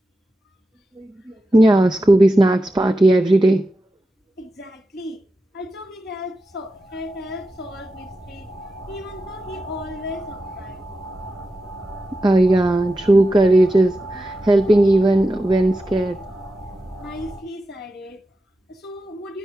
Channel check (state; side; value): normal; both; correlation 0.90